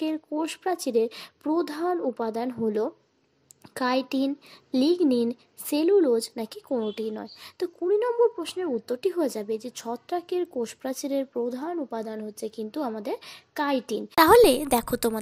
কোষ প্রাচীরের প্রধান উপাদান হলো কাইটিন, লিগনিন, সেলুলোজ নাকি কোনোটিই নয়? তো 20 নম্বর প্রশ্নের উত্তরটি হয়ে যাবে যে ছত্রাকের কোষপ্রাচীরের প্রধান উপাদান হচ্ছে কিন্তু আমাদের কাইটিন। তাহলে দেখো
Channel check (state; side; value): identical; both; correlation 1.00